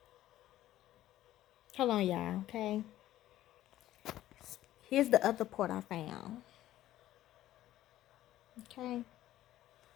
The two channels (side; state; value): right; quieter; 13.9 dB